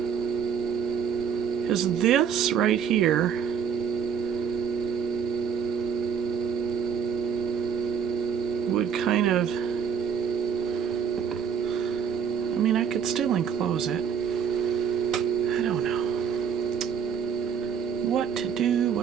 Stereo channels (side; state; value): left; quieter; 7.4 dB